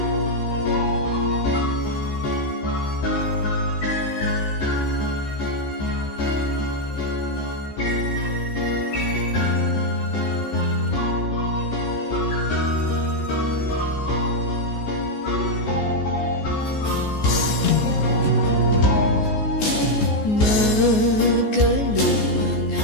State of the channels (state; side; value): late; right; 14 ms